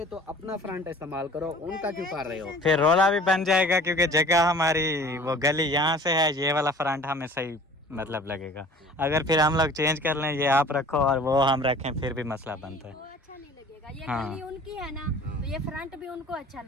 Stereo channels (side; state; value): both; normal; correlation 0.47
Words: तो अपना फ्रंट इस्तेमाल करो, उनका क्यों कर रहे हो? फिर रोला भी बन जाएगा क्योंकि जगह हमारी वो गली यहाँ से है, ये वाला फ्रंट हमें सही मतलब लगेगा। अगर फिर हम लोग चेंज कर लें, ये आप रखो और वो हम रखें, फिर भी मसला बनता है। वो अच्छा नहीं लगेगा। ये हाँ। गली उनकी है ना, तो ये फ्रंट भी उनको अच्छा